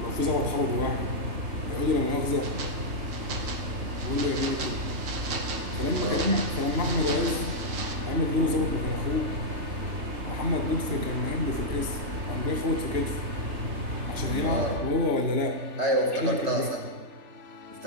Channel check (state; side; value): late; left; 3.0 ms